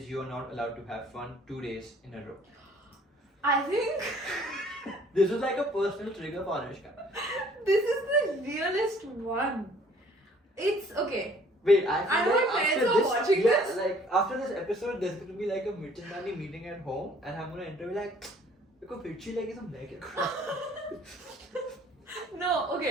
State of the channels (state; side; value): normal; both; correlation 0.57